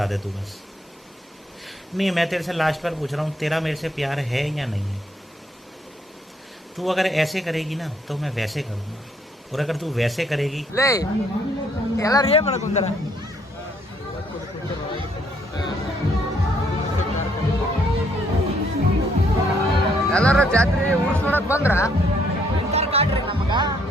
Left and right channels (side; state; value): both; normal; correlation 0.68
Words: दे तू बस नहीं मैं तेरे से लास्ट बार पूछ रहा हूँ तेरा मेरे से प्यार है या नहीं है तू अगर ऐसे करेगी ना तो मैं वैसे करूँगा और अगर तू वैसे करेगी ಲೇ ಎಲ್ಲಾರು ಏನ್ ಮಾಡಕ್ ಕುಂತಾರ ಎಲ್ಲಾರ ಜಾತ್ರೆ ಊರ್ಸ್ ನೋಡಕ್ ಬಂದ್ರ